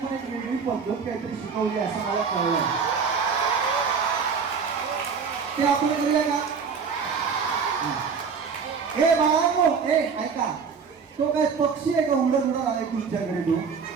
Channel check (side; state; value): left; quieter; 5.9 dB